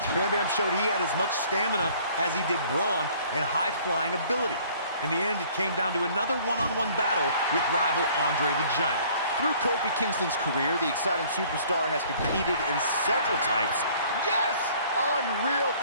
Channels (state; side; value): inverted; both; correlation -0.55